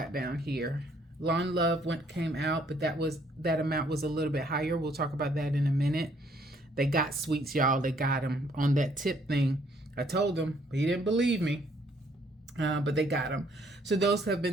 down here, Lawn Love came out, but that amount was a little bit higher. We'll talk about that in a minute. They got sweets, y'all. They got them on that tip thing. I told him, but he didn't believe me. But they got them. So those have been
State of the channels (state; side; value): normal; both; correlation 0.65